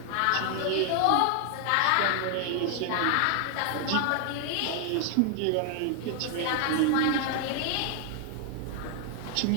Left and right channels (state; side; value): different; both; correlation 0.00